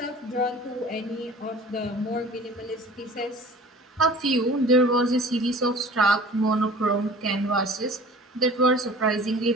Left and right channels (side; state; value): both; normal; correlation 0.44